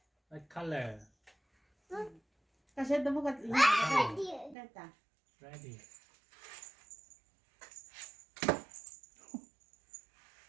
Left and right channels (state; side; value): drops out; left; at 4.5 s